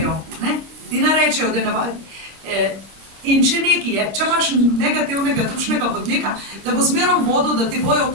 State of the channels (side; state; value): left; late; 26 ms